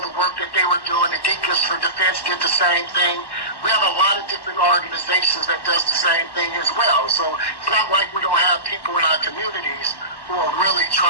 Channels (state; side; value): late; right; 1.1 ms